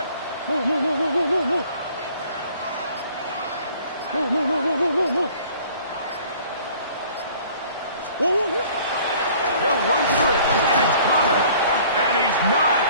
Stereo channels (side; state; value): both; inverted; correlation -0.52